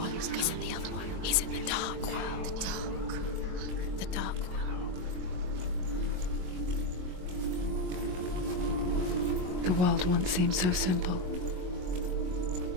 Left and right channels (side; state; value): left; late; 22 ms